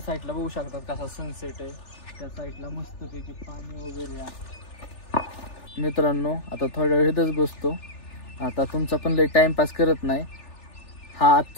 साईडला बघू शकतात कसा सनसेट आहे. त्या साईडला मस्तपैकी पाणी वगैरे आहे. मित्रांनो आता थोड्या वेळ इथंच बसतो. आता तुमचा पण लय टाइमपास करत नाही. हा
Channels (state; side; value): late; right; 3.4 ms